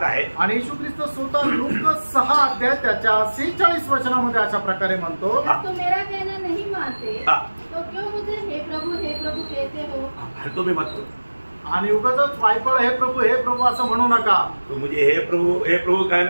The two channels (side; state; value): both; inverted; correlation -1.00